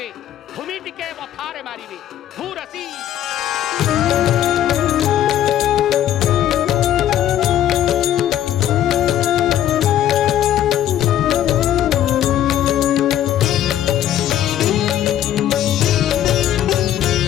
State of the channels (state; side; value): quieter; right; 11.6 dB